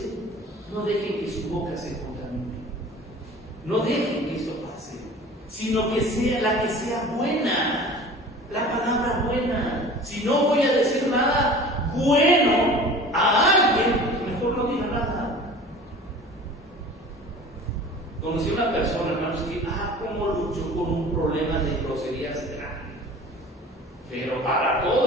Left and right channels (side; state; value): both; normal; correlation 0.41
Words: no dejen que su boca se contamine. No dejen que esto pase, sino que sea la que sea buena. La palabra buena. Si no voy a decir nada bueno a alguien, mejor no diga nada. Conocí a una persona, hermanos, que, cómo luchó con un problema de groserías grande. Pero para